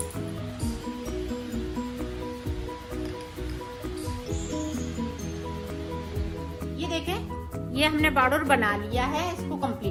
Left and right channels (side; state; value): both; identical; correlation 1.00